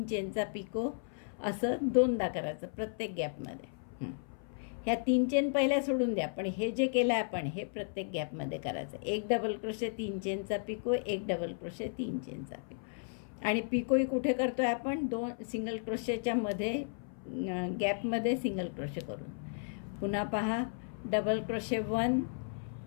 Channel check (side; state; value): right; silent; 55 dB below the other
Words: चेनचा पिको, असं 2दा करायचं प्रत्येक गॅपमध्ये. ह्या 3 चेन पहिल्या सोडून द्या, पण हे जे केलं आहे आपण हे प्रत्येक गॅपमध्ये करायचं. एक डबल क्रोशे 3 चेनचा पिको, एक डबल क्रोशे 3 चेनचा पिको. आणि पिकोही कुठे करतो आहे आपण, 2 सिंगल क्रोशेच्या मध्ये गॅपमध्ये सिंगल क्रोशे करून. पुन्हा पहा, double crochet 1